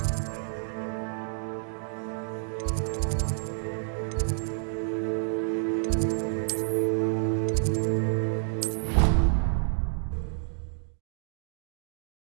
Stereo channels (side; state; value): left; silent; digital silence